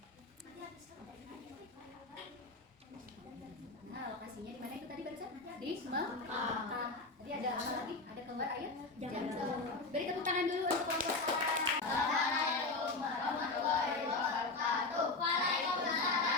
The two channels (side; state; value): right; quieter; 3.4 dB